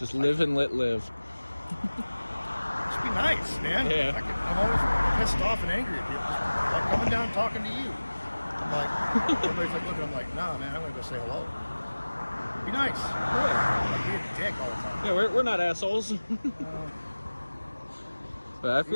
live and let live. Just be nice, man. Yeah. I'm always pissed off and angry at people. Like coming down talking to you. I'm like, everybody's like looking. I'm like, nah, man. I'm gonna go say hello. Be nice. Like, be a dick all the time. Yeah, we're not assholes. But I He was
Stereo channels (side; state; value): both; inverted; correlation -1.00